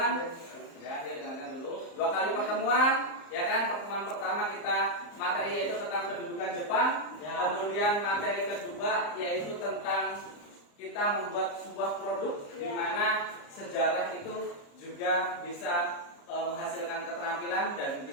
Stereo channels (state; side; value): late; right; 34 ms